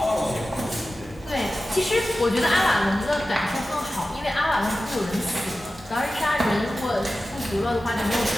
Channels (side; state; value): both; normal; correlation 0.94